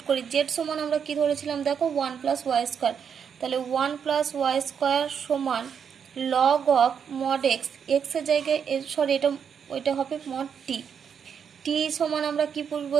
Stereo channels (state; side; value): quieter; left; 7.3 dB